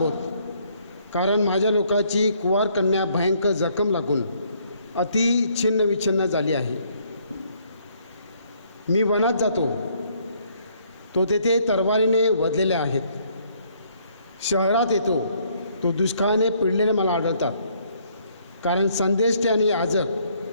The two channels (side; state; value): both; inverted; correlation -0.67